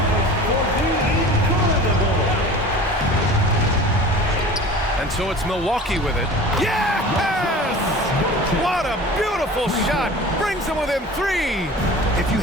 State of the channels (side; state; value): both; normal; correlation 0.40